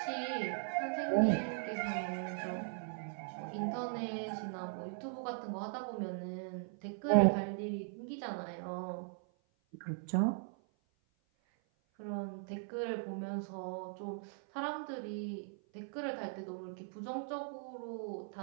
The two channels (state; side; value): silent; left; 52 dB below the other